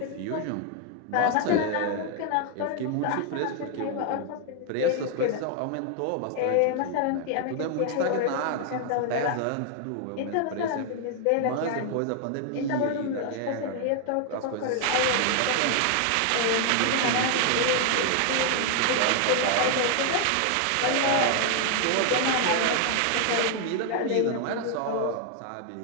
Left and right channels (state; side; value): different; both; correlation 0.00